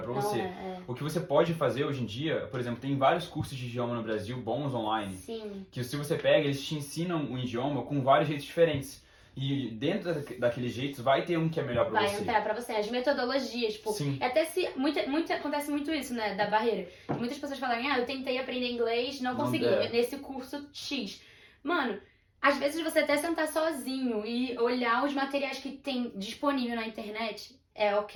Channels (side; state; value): both; identical; correlation 1.00